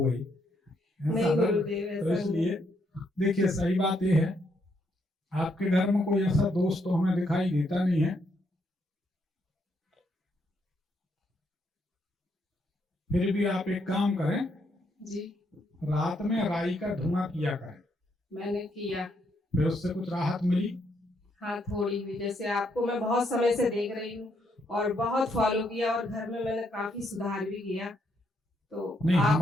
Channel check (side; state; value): both; normal; correlation 0.75